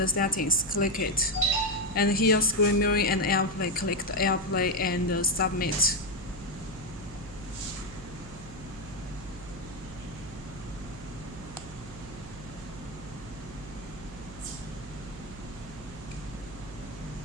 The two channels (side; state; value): right; noise; hum, 15 dB below the sound